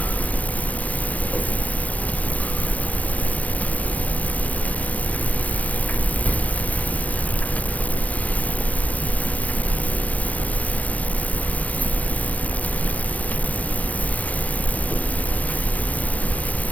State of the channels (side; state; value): right; late; 0.072 ms